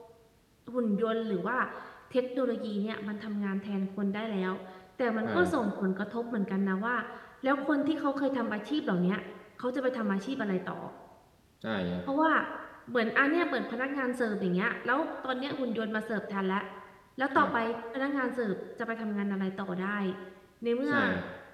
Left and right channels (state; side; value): identical; both; correlation 1.00